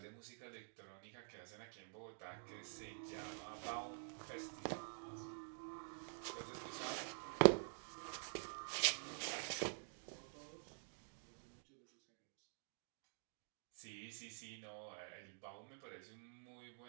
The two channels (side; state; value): left; silent; digital silence